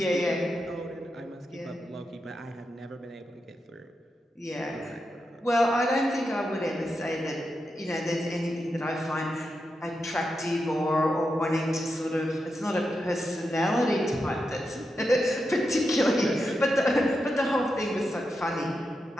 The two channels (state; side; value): normal; both; correlation 0.87